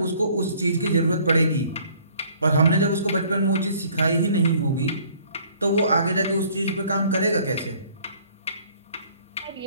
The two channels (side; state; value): both; inverted; correlation -0.57